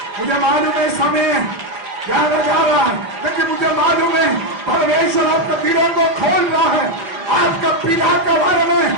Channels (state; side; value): late; left; 4.9 ms